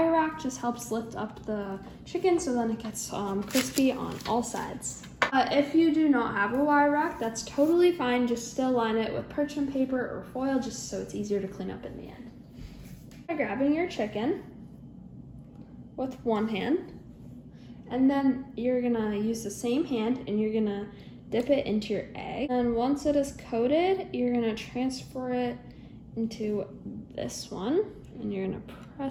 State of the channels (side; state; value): both; identical; correlation 1.00